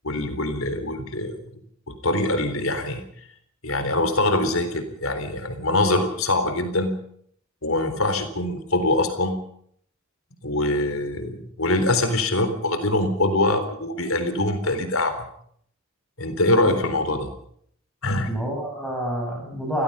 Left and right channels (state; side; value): normal; both; correlation -0.08